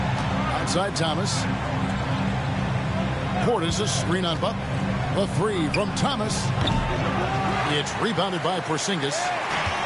Outside Thomas. Portis a screen on Butler. A three from Thomas. It's rebounded by Porzingis.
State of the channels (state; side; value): identical; both; correlation 1.00